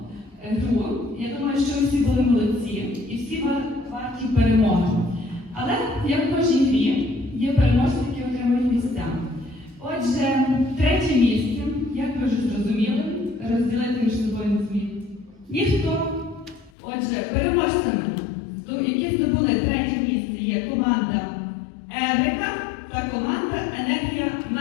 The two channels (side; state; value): right; drops out; at 16.7 s